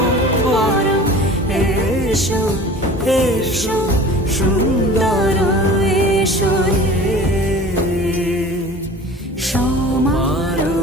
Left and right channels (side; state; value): both; normal; correlation 0.41